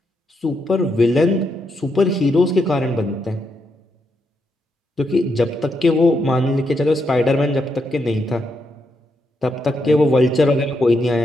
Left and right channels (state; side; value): normal; both; correlation 0.81